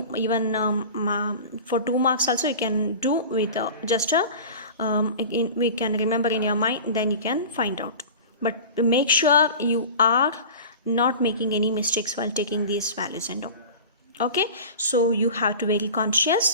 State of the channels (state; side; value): inverted; both; correlation -0.36